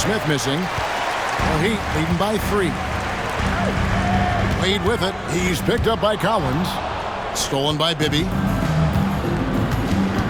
missing. The Heat leading by 3. Wade with it. He's picked up by Collins. Stolen by Bibby.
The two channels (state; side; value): identical; both; correlation 1.00